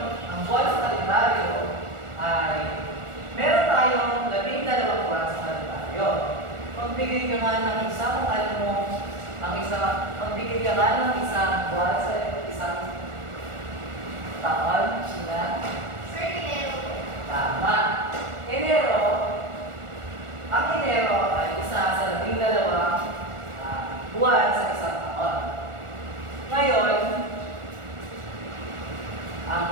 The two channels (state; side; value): late; left; 1.4 ms